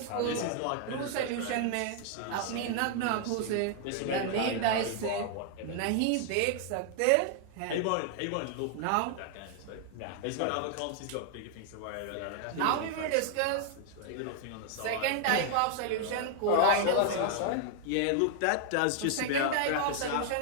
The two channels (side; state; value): both; different; correlation 0.00